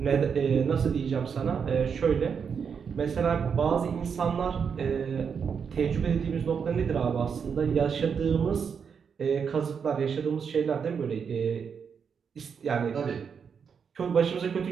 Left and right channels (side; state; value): left; quieter; 6.6 dB